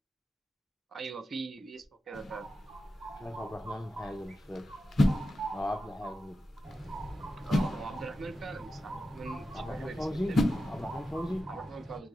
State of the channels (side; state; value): both; normal; correlation 0.90